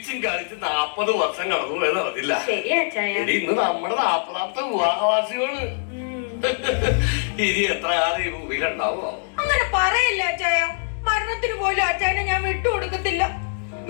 കളിച്ച് 40 വർഷം കടന്നു പോയത് അറിഞ്ഞില്ല. ഇന്ന് നമ്മുടെ 40ാമത്തെ വിവാഹവാസികള്. ഇനി എത്ര കാലം ഈ ഭൂമിയിലുണ്ടാവോ? അങ്ങനെ പറയല്ല അച്ചായ. മരണത്തിന് പോലും അച്ചായനെ ഞാൻ വിട്ടുകൊടുക്കത്തില്ല.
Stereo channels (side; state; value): right; silent; digital silence